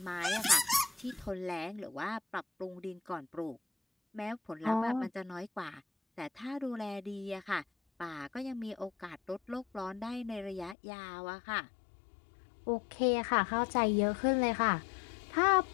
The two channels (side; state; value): right; drops out; at 10.8 s